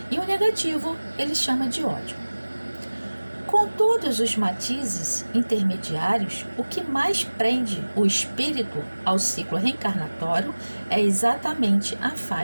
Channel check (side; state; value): both; inverted; correlation -1.00